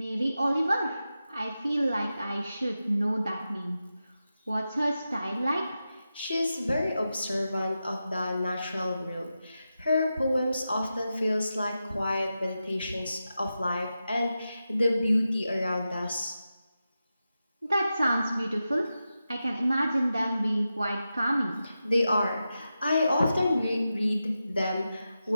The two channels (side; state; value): both; inverted; correlation -0.91